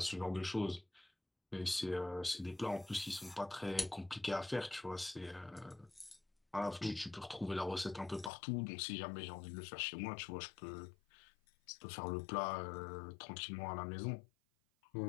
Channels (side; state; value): right; drops out; at 8.3 s